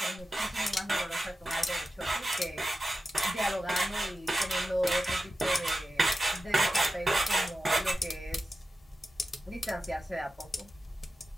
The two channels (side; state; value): both; normal; correlation 0.92